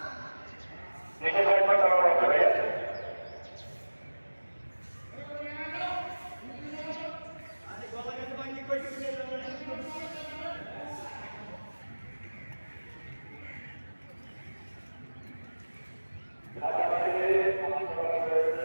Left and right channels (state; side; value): inverted; both; correlation -1.00